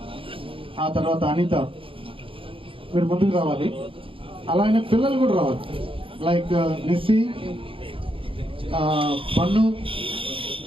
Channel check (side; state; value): left; late; 0.26 ms